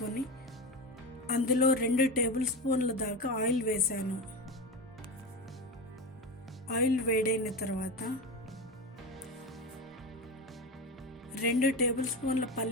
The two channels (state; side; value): normal; both; correlation 0.21